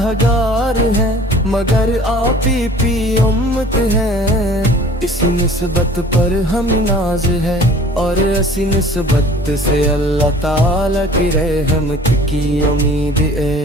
گار ہیں مگر آپ ہی امت ہیں، اس نسبت پر ہم ناز ہے اور اسی نسبت سے اللہ تعالیٰ کی رحمت کی امید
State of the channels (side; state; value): both; normal; correlation 0.48